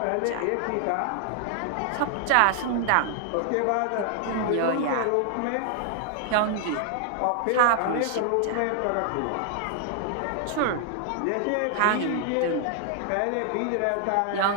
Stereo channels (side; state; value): both; different; correlation 0.00